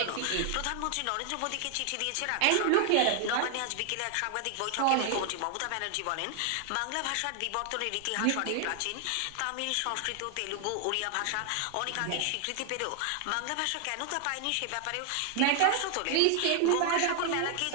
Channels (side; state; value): both; different; correlation 0.00